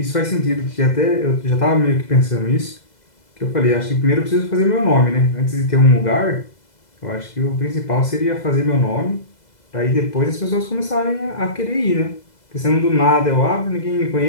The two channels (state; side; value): late; right; 2.0 ms